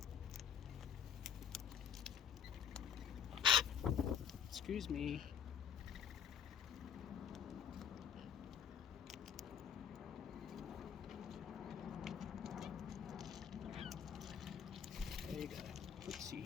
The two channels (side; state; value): right; quieter; 8.1 dB